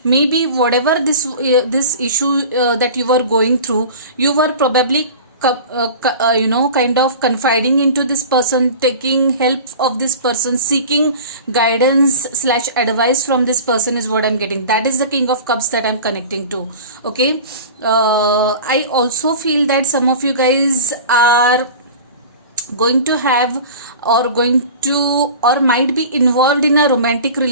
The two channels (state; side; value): inverted; both; correlation -0.37